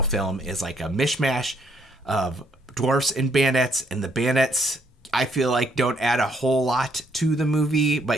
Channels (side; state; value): both; normal; correlation 0.70